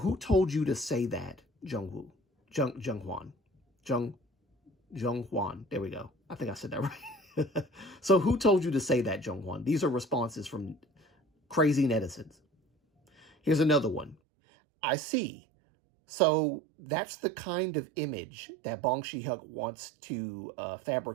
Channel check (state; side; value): drops out; left; at 14.2 s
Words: told you to say that, Jung Hwan? There we go. I think I said that right. So who told you to say that, Jung Hwan?" These are responses from crazy netizens. Here's another one. "I see. So that's the kind of image that Bong Si-hyuk wants to